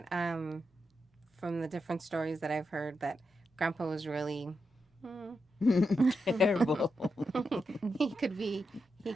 from the different stories that I've heard that Grandpa was really Terrible. he could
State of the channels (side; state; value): both; normal; correlation 0.86